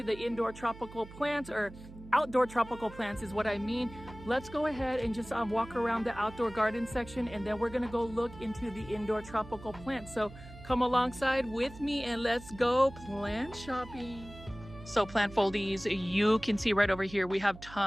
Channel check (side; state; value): right; noise; hum, 16 dB below the sound